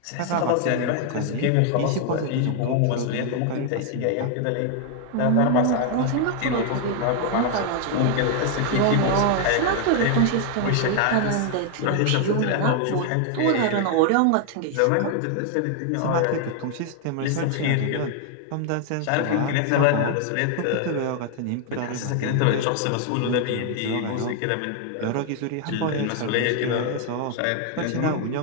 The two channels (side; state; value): both; different; correlation 0.00